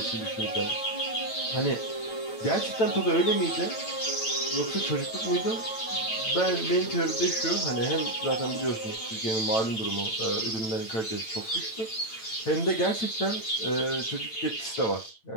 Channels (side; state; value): right; late; 9.0 ms